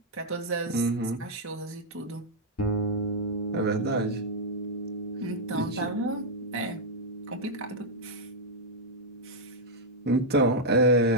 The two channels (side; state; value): both; normal; correlation -0.04